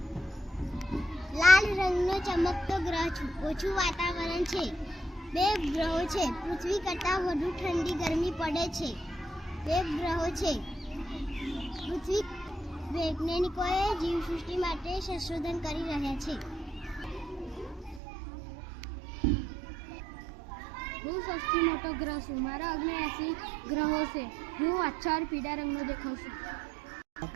લાલ રંગનો ચમકતો ગ્રહ છું. ઓછું વાતાવરણ છે. 2 ગ્રહો છે. પૃથ્વી કરતાં વધુ ઠંડી ગરમી પડે છે. 2 ગ્રહો છે. પૃથ્વી વૈજ્ઞાનિકોએ જીવસૃષ્ટિ માટે સંશોધન કરી રહ્યા છે. હું સૌથી મોટો ગ્રહ છું. મારા 79 ગ્રહો છે. હું આછા પીળા રંગનો દેખાઉં છું.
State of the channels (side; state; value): left; drops out; at 18.0 s